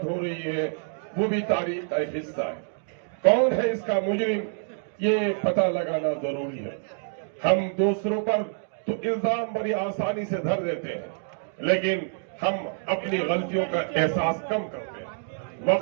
हो रही है, वो भी तारीख का एक हिस्सा है। कौन है इसका मुजरिम, ये पता लगाना जरूरी है। हम दूसरों पर तो इल्जाम बड़ी आसानी से धर देते हैं, लेकिन हम अपनी गलतियों का एहसास कम करते हैं।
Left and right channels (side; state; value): left; silent; digital silence